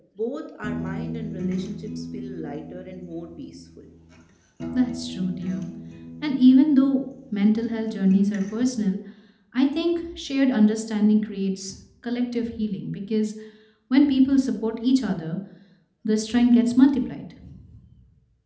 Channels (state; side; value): identical; both; correlation 1.00